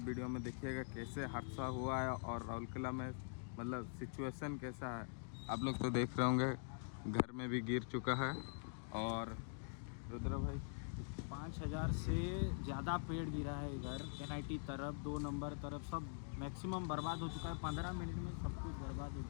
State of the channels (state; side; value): silent; right; digital silence